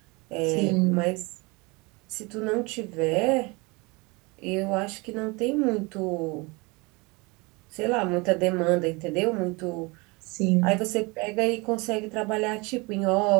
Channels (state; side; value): quieter; left; 26.5 dB